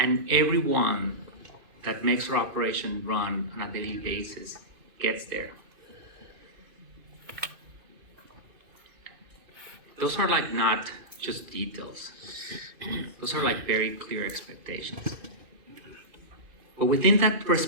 everyone that makes our operation run on a daily basis gets there. those are like not just details. Those are like very clear expectations. But within that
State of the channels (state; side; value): late; left; 2.5 ms